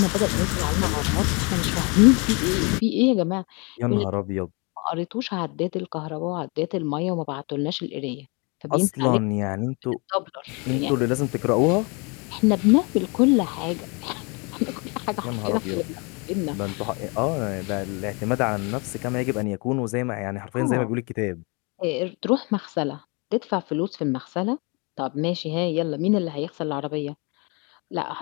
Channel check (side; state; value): right; quieter; 30.8 dB